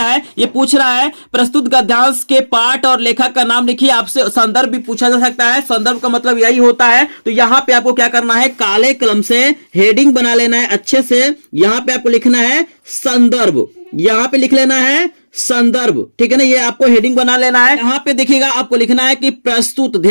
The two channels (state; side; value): inverted; both; correlation -1.00